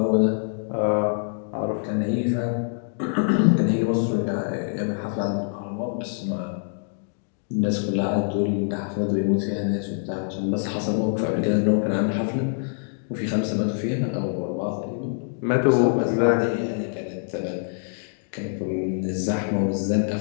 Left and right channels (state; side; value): silent; right; digital silence